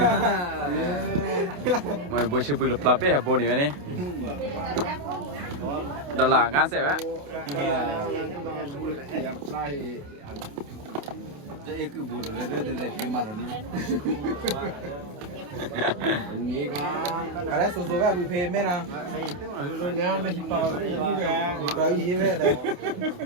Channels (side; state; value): left; late; 28 ms